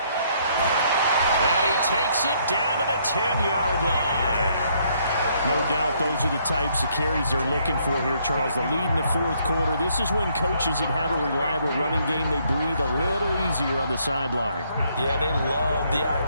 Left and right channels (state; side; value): inverted; both; correlation -0.69